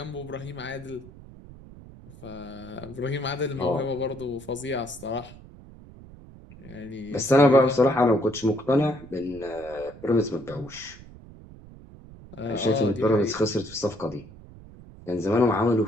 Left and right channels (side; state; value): right; noise; rumble, 19 dB below the sound